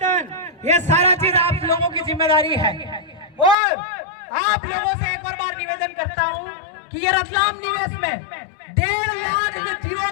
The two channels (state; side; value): drops out; right; at 3.6 s